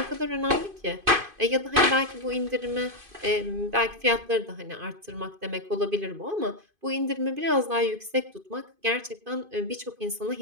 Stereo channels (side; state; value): left; late; 2.5 ms